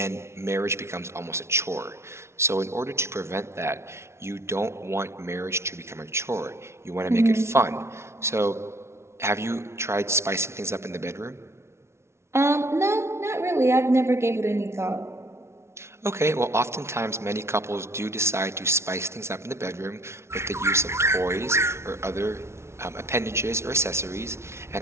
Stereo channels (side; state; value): left; late; 0.13 ms